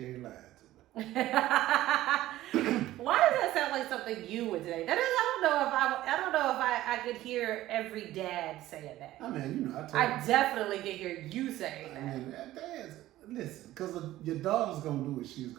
ain't lying to me. Why does that sound like something you would say? That is, I don't know if I could hear every dad saying that. I mean, you know, I definitely can hear you saying I that. mean, dads, listen, because your daughter's gonna do what she's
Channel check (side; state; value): left; quieter; 15.1 dB